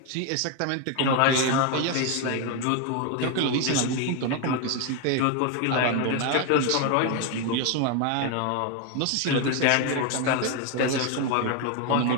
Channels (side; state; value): both; different; correlation 0.01